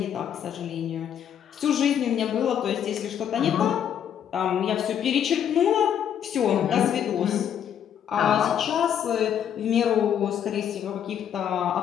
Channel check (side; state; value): right; quieter; 9.1 dB